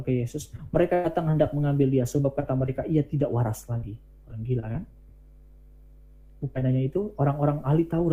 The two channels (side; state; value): both; identical; correlation 1.00